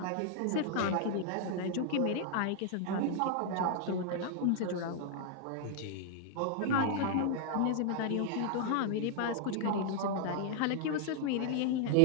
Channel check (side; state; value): both; different; correlation 0.00